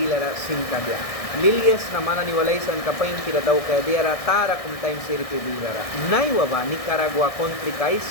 singkadya lilyas na manani walaysan kapain kira daw kaya diara tara kum time siri pibilara naiwa ba Nicaragua country kais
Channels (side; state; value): right; late; 1.6 ms